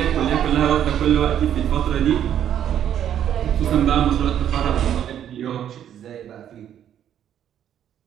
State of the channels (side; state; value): left; quieter; 10.1 dB